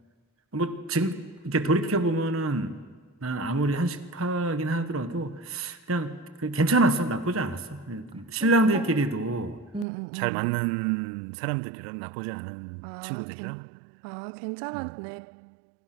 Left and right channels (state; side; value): drops out; left; at 9.9 s